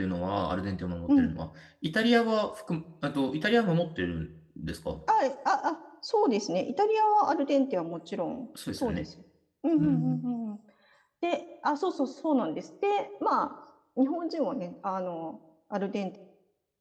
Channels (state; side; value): identical; both; correlation 1.00